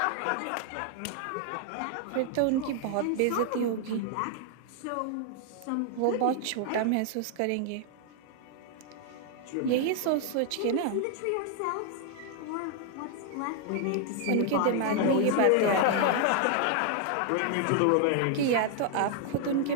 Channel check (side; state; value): both; different; correlation 0.00